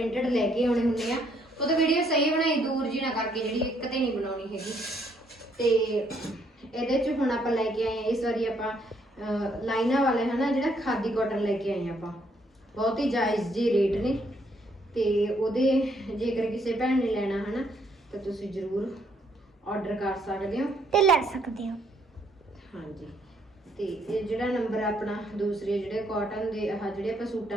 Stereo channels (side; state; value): both; normal; correlation 0.70